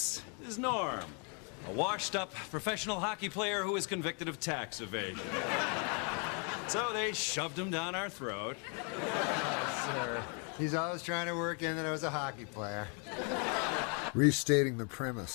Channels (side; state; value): right; quieter; 37.3 dB